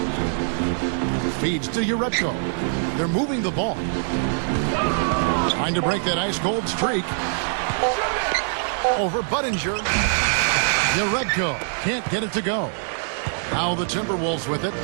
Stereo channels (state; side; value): silent; left; digital silence